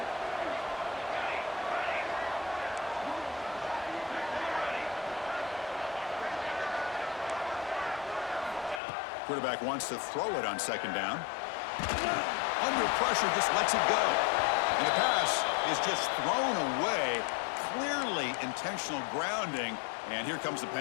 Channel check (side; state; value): right; drops out; at 8.8 s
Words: Quarterback wants to throw it on 2nd down. Under pressure, just lets it go. And the pass is just thrown away. Clearly intentional grounding. And here comes the